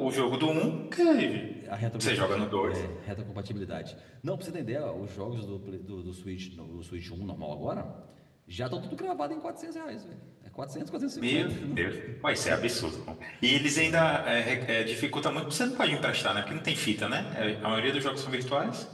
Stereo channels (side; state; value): both; identical; correlation 1.00